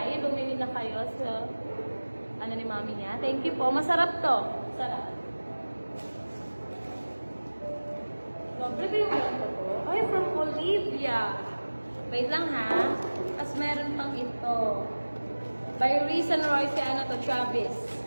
Bumili na kayo sa ano ni mami niya. Thank you po. Masarap to. Masarap. Prepare mo lang ito po. Ay, from Olivia. Wait lang ha. Tapos meron pang ito. By Reese and Roy, si ano to, Travis.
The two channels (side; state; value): both; inverted; correlation -1.00